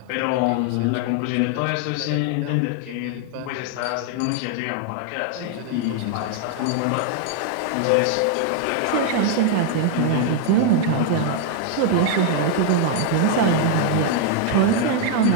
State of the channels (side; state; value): both; different; correlation 0.00